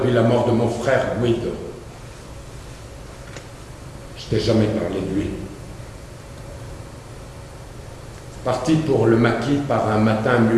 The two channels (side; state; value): both; identical; correlation 1.00